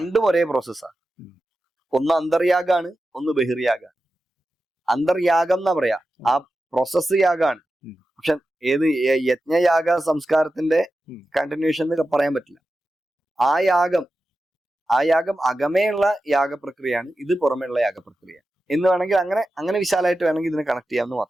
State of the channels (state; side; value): normal; both; correlation 0.92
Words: ഒരേ പ്രോസസ്സാണ്. ഒന്ന് അന്തർയാഗാണ്, ഒന്ന് ബഹിർയാഗാണ്. അന്തർയാഗം എന്നാ പറയാ, ആ പ്രോസസ് യാഗാണ്. പക്ഷെ ഏത് യജ്ഞയാഗ സംസ്കാരത്തിന്റെ കണ്ടിന്യൂഷൻ എന്ന് പറയാൻ പറ്റില്ല. ആ യാഗം അകമേയുള്ള യാഗപ്രക്രിയയാണ്, ഇത് പുറമേയുള്ള യാഗപ്രക്രിയ എന്ന് വേണമെങ്കിൽ അങ്ങനെ വിശാലമായിട്ട് വേണമെങ്കിൽ ഇതിനെ കണക്ട് ചെയ്യാമെന്ന്